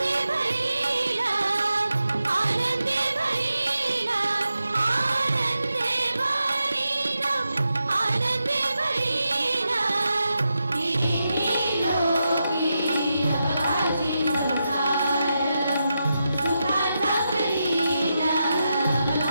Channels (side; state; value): both; inverted; correlation -0.87